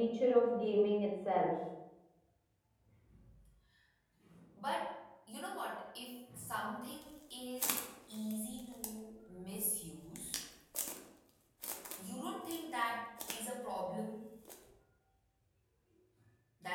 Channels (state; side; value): identical; both; correlation 1.00